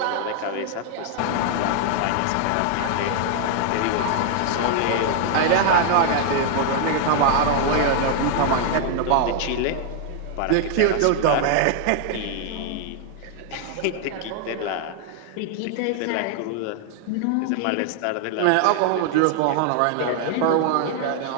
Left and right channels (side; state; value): both; different; correlation 0.00